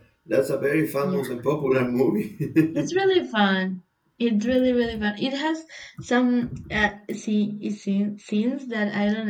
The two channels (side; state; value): both; identical; correlation 1.00